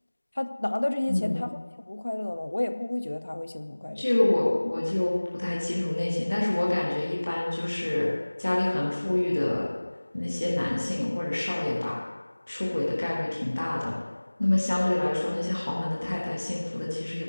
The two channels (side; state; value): both; inverted; correlation -1.00